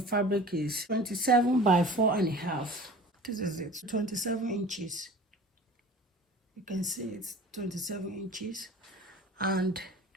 is 27 by 4.5. This is it, 27 inches. You can see it's 27 inches and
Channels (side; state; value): both; normal; correlation 0.41